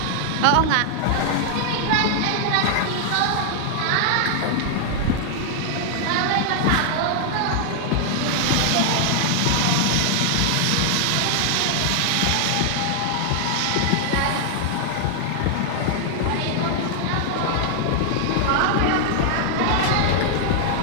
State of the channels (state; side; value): different; both; correlation 0.00